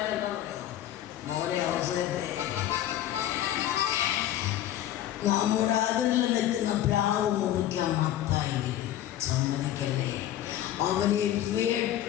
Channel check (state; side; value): quieter; right; 12.3 dB